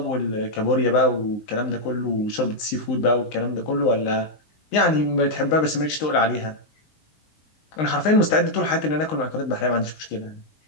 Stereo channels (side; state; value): right; late; 19 ms